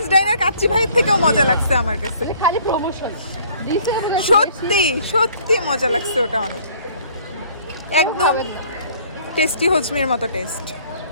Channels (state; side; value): inverted; both; correlation -0.57